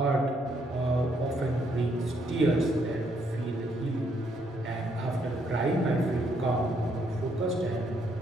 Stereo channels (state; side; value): normal; both; correlation 0.73